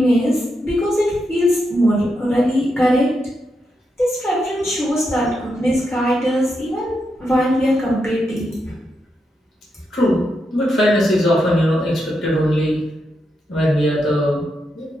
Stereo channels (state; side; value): normal; both; correlation 0.84